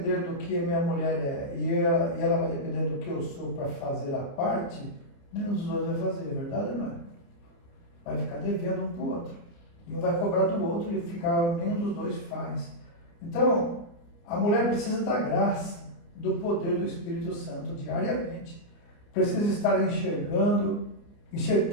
do que minha mulher é e ela vai depender do que eu sou para fazer a parte, nenhum dos dois vai fazer, verdade ou não é? Vai ficar devendo um para o outro. E um vai cobrar do outro e nenhum dos dois faz. Então, a mulher precisa da graça, do poder do Espírito Santo diariamente. Precisa estar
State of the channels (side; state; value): right; late; 29 ms